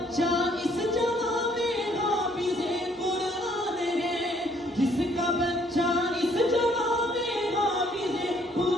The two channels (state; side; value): normal; both; correlation 0.64